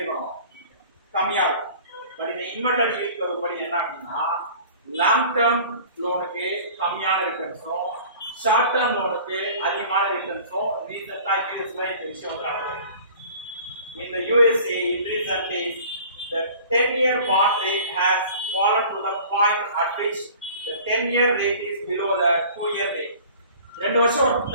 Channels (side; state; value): both; inverted; correlation -0.45